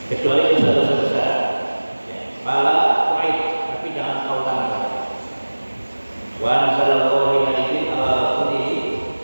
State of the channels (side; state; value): both; inverted; correlation -1.00